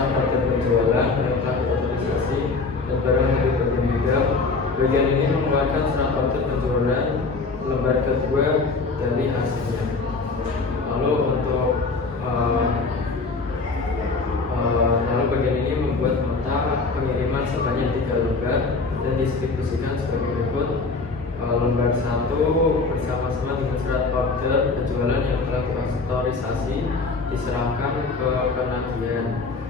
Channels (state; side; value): quieter; right; 4.0 dB